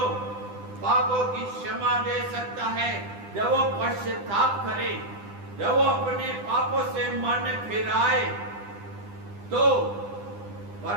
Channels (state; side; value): late; left; 9.9 ms